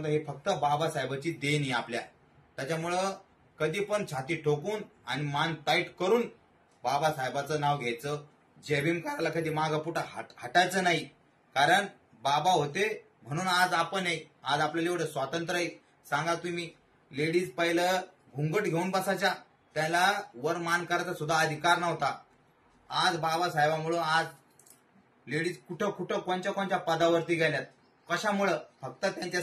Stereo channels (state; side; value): identical; both; correlation 1.00